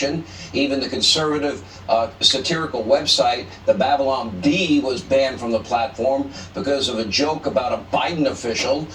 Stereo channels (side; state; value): both; identical; correlation 1.00